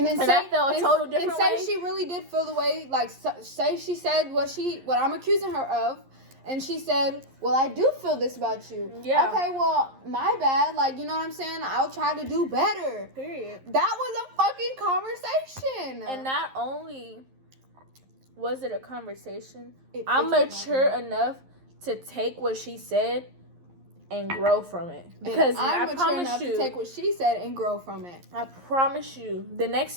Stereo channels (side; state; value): left; late; 11 ms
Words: then I felt a total different way. And say she really did feel the way, like, say she said what I'm accusing her of, and she said, well, I do feel this about you. Yeah. Okay, well, my bad. Like, you know what I'm saying? I'll try to do better. Period. That was a fucking conversation. And not only was it a conversation, I'm mature enough to take what she said and grow from it. Because I'm I mature enough to take what she said and grow from it. I promise you, the next